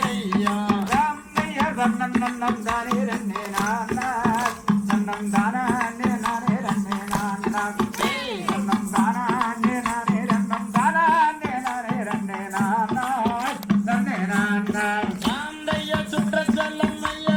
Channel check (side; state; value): both; identical; correlation 1.00